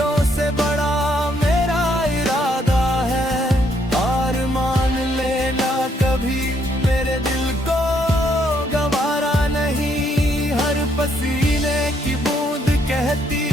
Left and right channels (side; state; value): both; normal; correlation 0.71